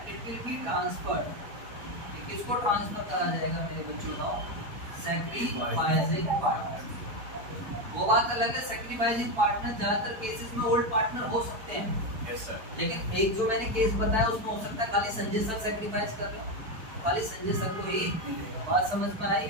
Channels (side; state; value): left; late; 4.5 ms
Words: इट विल बी ट्रांसफर्ड। किसको ट्रांसफर करा जाएगा मेरे बच्चों का, सैक्रिफाइसिंग पार्टनर। वो बात अलग है, सैक्रिफाइसिंग पार्टनर ज्यादातर केसेस में ओल्ड पार्टनर हो सकते हैं। Yes sir. लेकिन एक जो मैंने केस बताया उसमें हो सकता है खाली संजय सर सैक्रिफाइस कर रहे हो, खाली संजय सर को ही मिलेगा। बात समझ में आई,